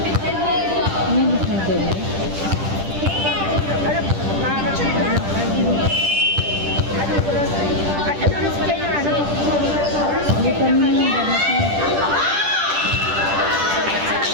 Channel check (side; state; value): left; late; 10 ms